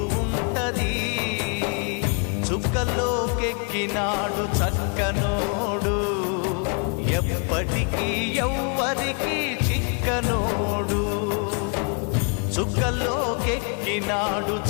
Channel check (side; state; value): right; quieter; 37.5 dB